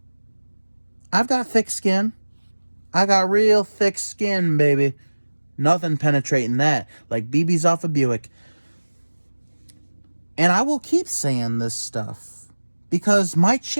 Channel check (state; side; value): inverted; both; correlation -1.00